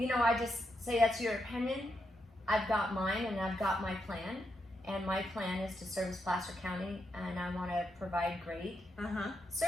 I just say that's your opinion. I've got mine and I've got my plan. And my plan is to service Placer County, and I want to provide great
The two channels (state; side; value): normal; both; correlation 0.82